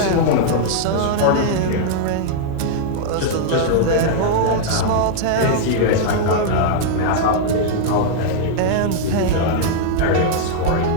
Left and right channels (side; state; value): both; different; correlation -0.01